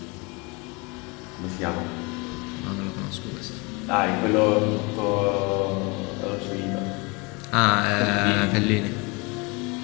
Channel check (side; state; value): right; quieter; 27.9 dB